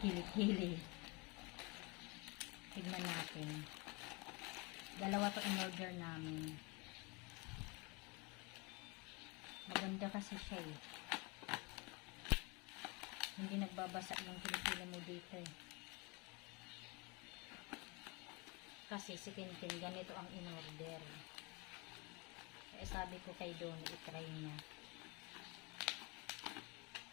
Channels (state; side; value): quieter; right; 27.3 dB